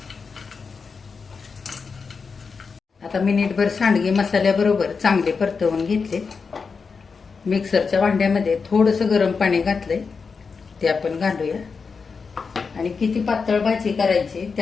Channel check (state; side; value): quieter; right; 5.1 dB